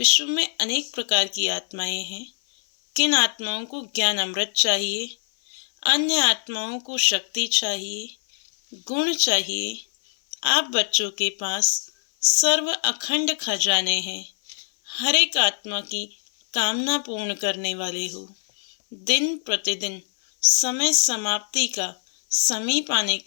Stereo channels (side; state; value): right; silent; 61 dB below the other